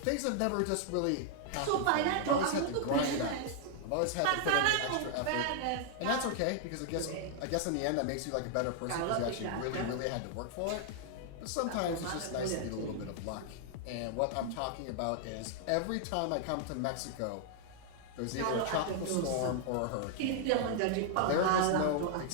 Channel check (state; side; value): different; both; correlation 0.00